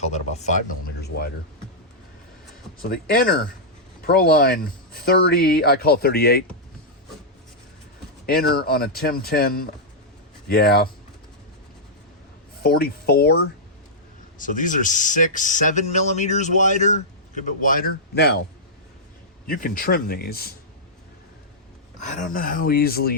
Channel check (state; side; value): normal; both; correlation -0.09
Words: that about 5 millimeters wider. So the inner Proline 30, I call it 38. Inner on a Timtin, yeah, 44. So these are 7 millimeters wider, a good bit wider. Now, you can trim these. I don't know how easily